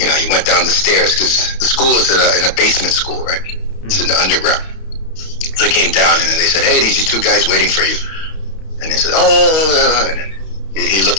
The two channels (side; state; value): right; late; 32 ms